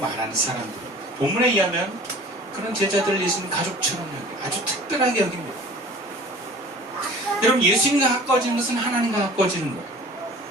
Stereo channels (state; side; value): normal; both; correlation 0.45